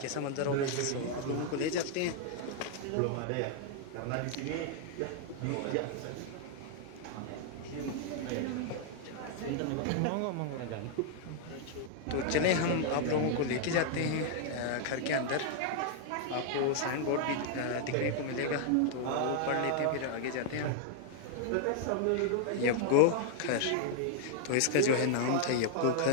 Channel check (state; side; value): different; both; correlation 0.00